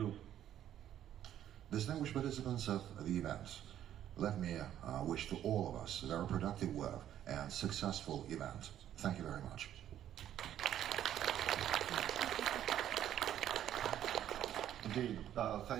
Distinguished participants of the event, let me wish to all of us a very productive work and successful event. Thank you very much. Indeed.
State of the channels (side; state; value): left; quieter; 11.1 dB